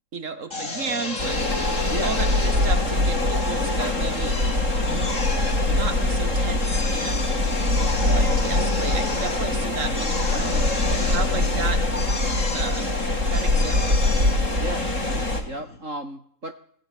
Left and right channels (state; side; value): late; left; 3.7 ms